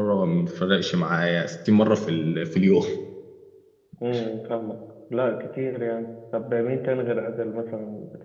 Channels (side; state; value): both; identical; correlation 1.00